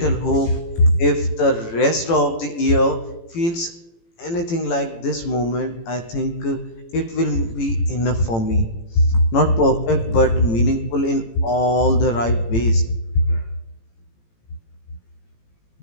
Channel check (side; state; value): right; late; 18 ms